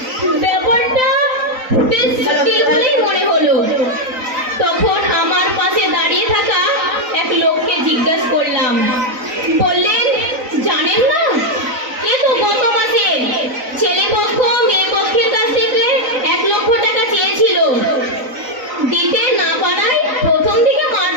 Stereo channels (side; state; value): left; late; 3.9 ms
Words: ব্যাপারটা বেশ জটিল বলেই মনে হলো। তখন আমার পাশে দাঁড়িয়ে থাকা এক লোককে জিজ্ঞাসা করলাম। বললেন, জানেন না, এ তো গত মাসে ছেলে পক্ষ মেয়ে পক্ষের কাছ থেকে 1 লক্ষ টাকা চেয়েছিল। দিতে না পারায় প্রথম দিকে